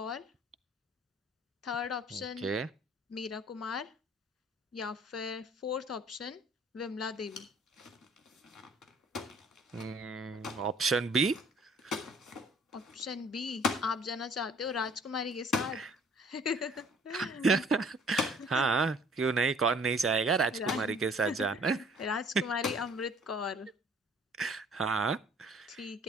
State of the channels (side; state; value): both; normal; correlation 0.55